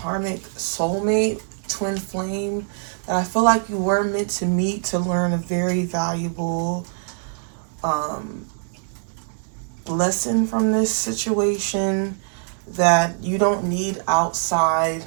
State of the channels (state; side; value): silent; left; digital silence